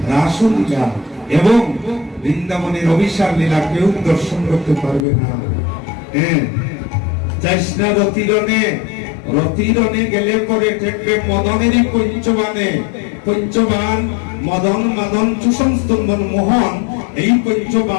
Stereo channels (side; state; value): right; drops out; at 5.1 s